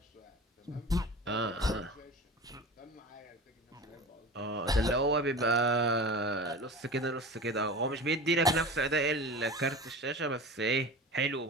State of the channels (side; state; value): both; normal; correlation 0.33